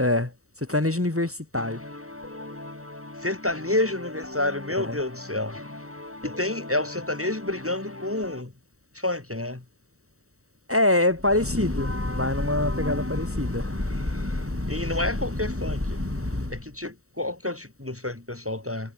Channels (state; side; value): late; left; 0.64 ms